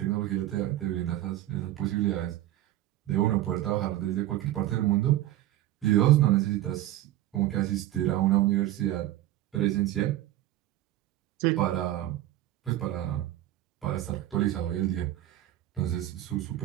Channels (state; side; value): quieter; left; 14.5 dB